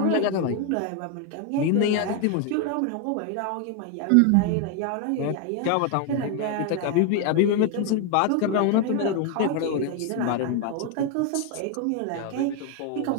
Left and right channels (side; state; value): both; different; correlation 0.01